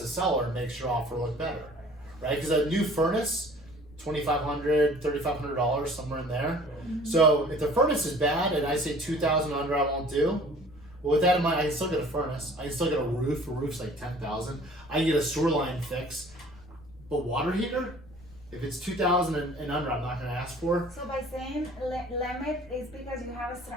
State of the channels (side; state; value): left; noise; rumble, 22 dB below the sound